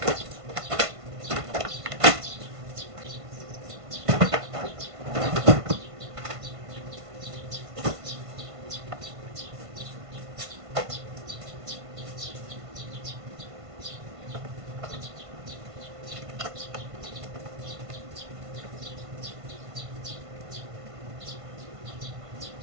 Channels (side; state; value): left; late; 1.5 ms